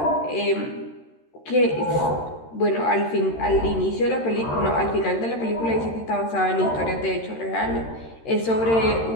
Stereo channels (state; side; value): late; right; 13 ms